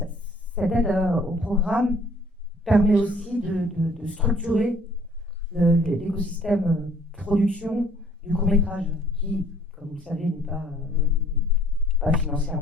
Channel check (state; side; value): normal; both; correlation 0.58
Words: cette aide au programme permet aussi de structurer l'écosystème production du court-métrage qui, comme vous le savez, n'est pas